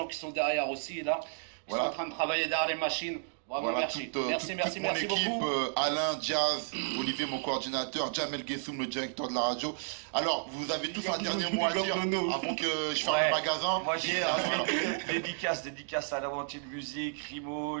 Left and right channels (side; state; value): left; silent; digital silence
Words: qui sont derrière aussi là. Qui sont en train de travailler derrière les machines. Bravo, voilà, merci. Merci mon équipe, beaucoup. Alain, Jazz, Olivier, mon coordinateur, Jamel Gessoum, le directeur de la radio. Alors, vous avez tous un dernier mot à dire avant que je ferme le magasin. Moi, j'ai dédicace à l'Aventure de Musique, Rimo,